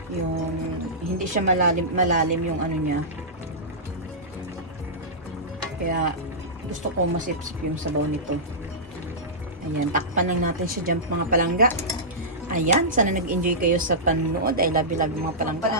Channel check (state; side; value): normal; both; correlation -0.15